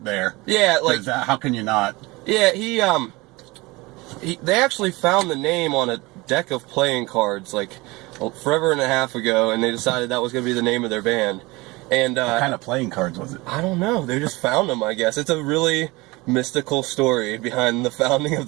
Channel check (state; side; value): quieter; left; 23.0 dB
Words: there. Yeah, like how can you not? Yeah, they actually found the name on a deck of playing cards like forever and a half ago, and they decided that was going to be the name of their band. And what kind of playing cards was it? I don't know. They just found them, I guess. It's a really mystical story behind the founding of